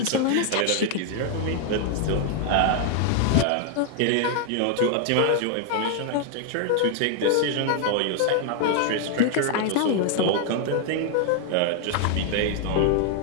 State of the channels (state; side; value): different; both; correlation 0.00